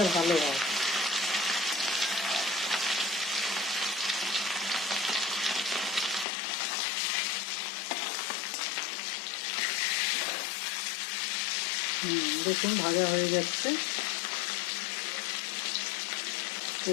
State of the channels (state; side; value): drops out; right; at 6.2 s